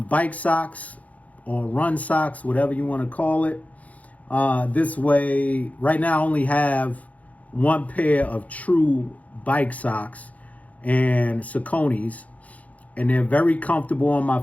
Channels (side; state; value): right; late; 0.070 ms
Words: socks or run socks, whatever you want to call it. This way, right now I only have one pair of true bike socks and Sauconys, and they're very comfortable on my